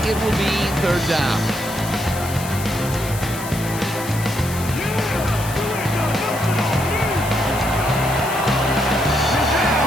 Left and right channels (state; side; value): noise; left; hiss, 11 dB below the sound